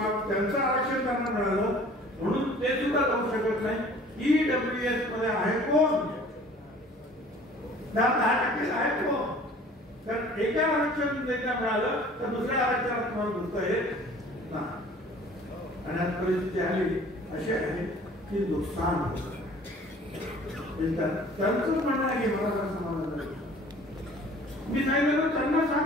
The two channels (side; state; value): both; normal; correlation 0.50